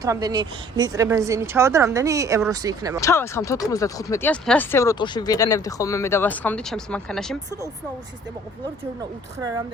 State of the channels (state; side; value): normal; both; correlation 0.54